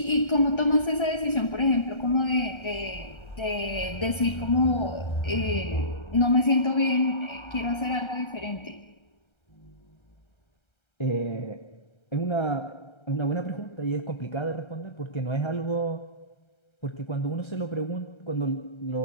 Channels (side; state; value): right; late; 1.3 ms